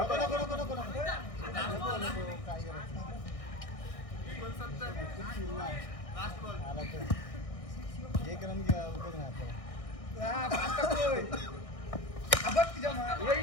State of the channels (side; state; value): right; late; 1.6 ms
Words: काय एक रन उपयोग नाही